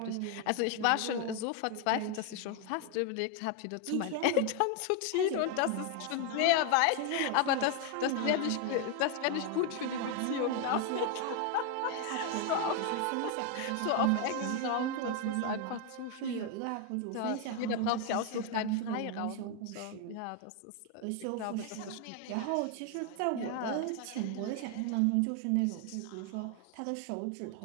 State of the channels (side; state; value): both; different; correlation 0.01